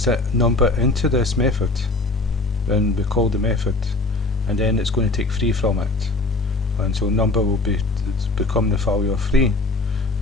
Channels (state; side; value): quieter; right; 3.1 dB